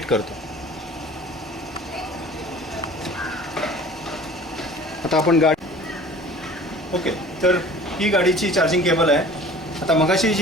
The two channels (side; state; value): both; normal; correlation 0.46